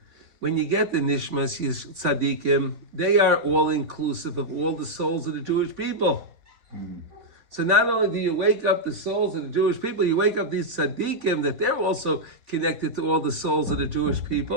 When you get the Neshamos Tzaddikim, they are all inclusive of all the souls of the Jewish people. So not only do you wake up the souls of the Jewish people, you wake up these Tzaddikim that they're also connected to all the souls of the Jewish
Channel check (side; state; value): left; late; 3.5 ms